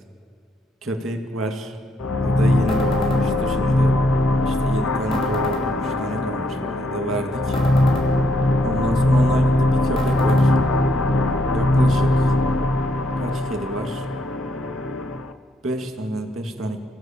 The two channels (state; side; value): normal; both; correlation 0.74